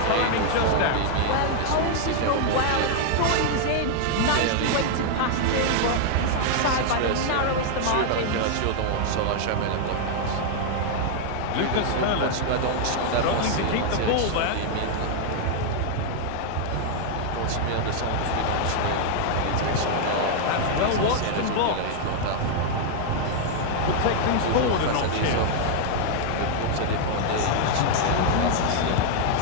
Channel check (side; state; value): both; different; correlation 0.00